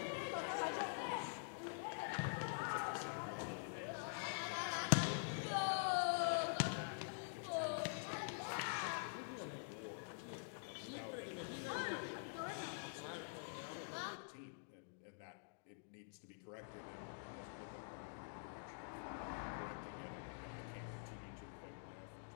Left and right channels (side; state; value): right; silent; digital silence